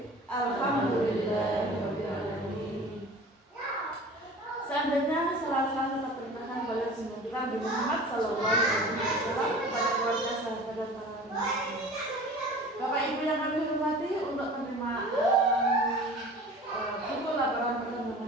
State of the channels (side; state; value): both; normal; correlation 0.41